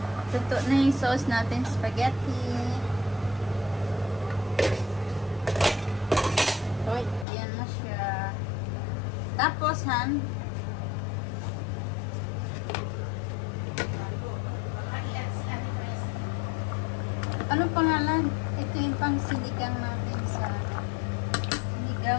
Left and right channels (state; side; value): drops out; right; at 7.2 s